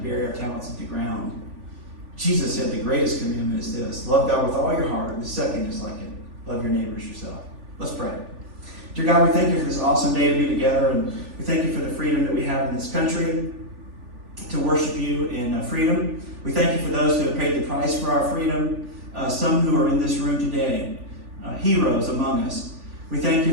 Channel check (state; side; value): late; left; 3.4 ms